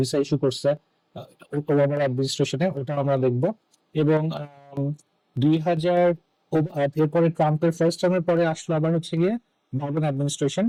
ভিসা ইস্যু করছে ওবামার অ্যাডমিনিস্ট্রেশনে, ওটা আমরা দেখবো। এবং 2000 এরপরে ট্রাম্পের ফার্স্ট টার্মের পরে আসলো আবার হচ্ছে গিয়ে বাইডেন অ্যাডমিনিস্ট্রেশন।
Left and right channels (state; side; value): identical; both; correlation 1.00